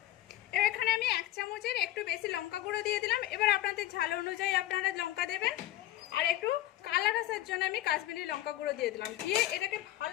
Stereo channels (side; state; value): right; quieter; 14.5 dB